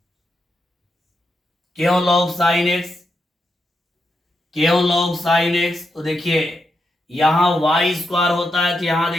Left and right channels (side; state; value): both; normal; correlation 0.84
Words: क्यों लॉग साइन एक्स, क्यों लॉग साइन एक्स? तो देखिए यहां वाई स्क्वायर होता है, तो यहां